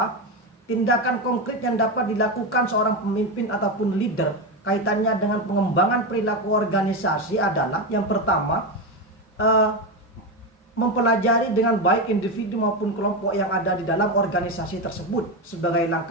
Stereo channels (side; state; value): both; normal; correlation 0.14